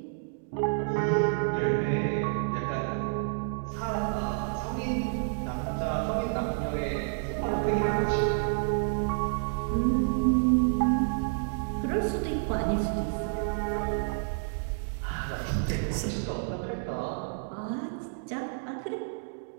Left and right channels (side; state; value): left; silent; digital silence